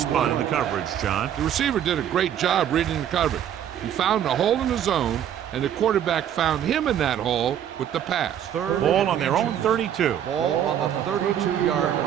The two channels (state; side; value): quieter; left; 9.9 dB